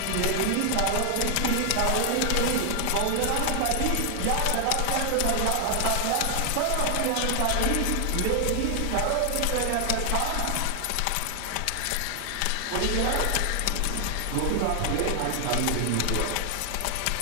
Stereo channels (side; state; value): both; different; correlation 0.00